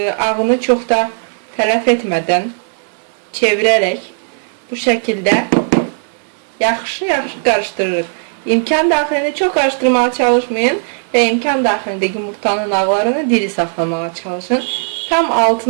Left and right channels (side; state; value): left; silent; digital silence